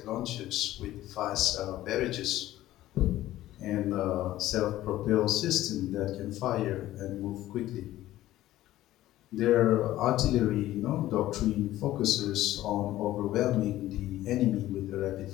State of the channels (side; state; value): right; quieter; 14.8 dB